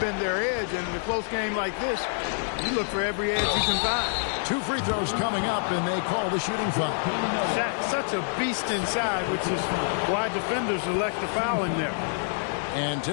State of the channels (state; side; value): silent; right; digital silence